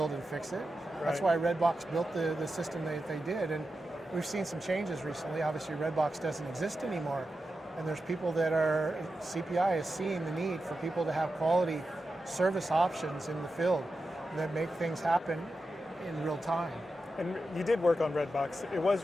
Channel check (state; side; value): normal; both; correlation 0.90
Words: and fix it. Right. That's why Redbox built the system that they did. And we've seen some changes recently. Obviously, Redbox doesn't exist anymore. And there's people CPI is seeing the need for people to have quality service options in the field that make things happen in real time. And you did work on Redbox. It